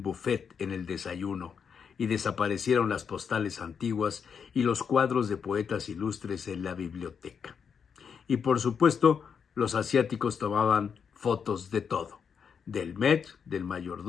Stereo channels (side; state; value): right; quieter; 6.7 dB